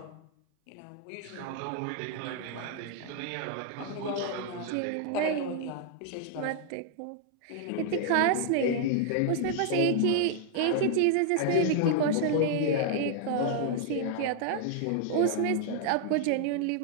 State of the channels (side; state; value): both; different; correlation -0.01